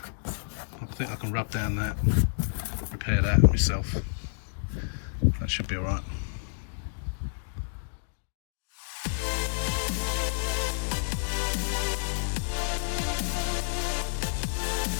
think I can rub down that, repair that myself. That should be alright.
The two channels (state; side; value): silent; right; digital silence